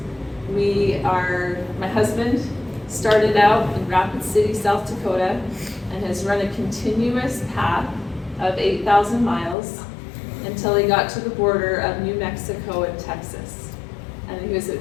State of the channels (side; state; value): right; drops out; at 9.6 s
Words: My husband started out in Rapid City, South Dakota, and has run a continuous path of 8,000 miles until he got to the border of New Mexico and Texas. And he was